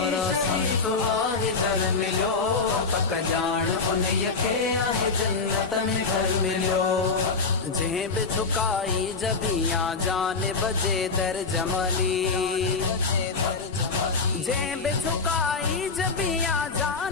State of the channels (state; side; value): quieter; right; 4.4 dB